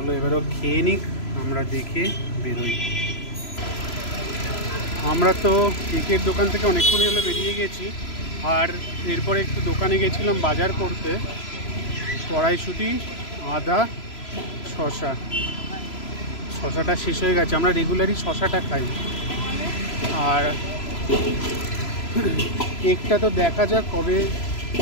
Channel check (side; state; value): right; late; 3.0 ms